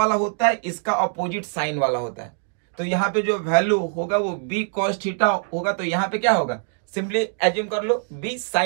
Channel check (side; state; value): left; silent; 58 dB below the other